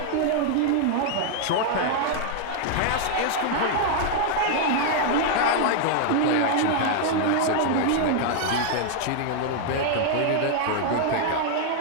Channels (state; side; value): different; both; correlation 0.00